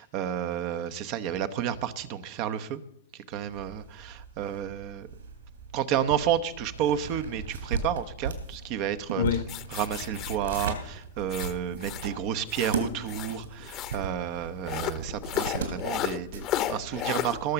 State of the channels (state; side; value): quieter; left; 4.3 dB